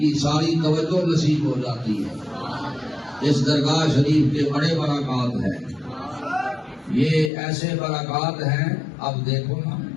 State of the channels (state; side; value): drops out; right; at 7.3 s